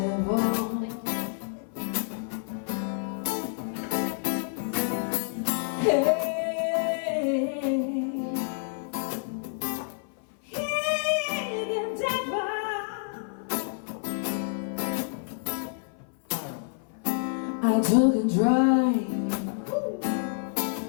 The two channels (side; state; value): right; silent; 56 dB below the other